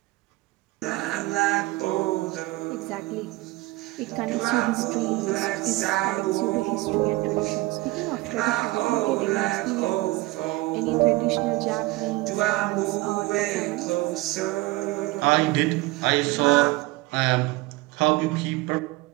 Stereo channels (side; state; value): left; quieter; 20.6 dB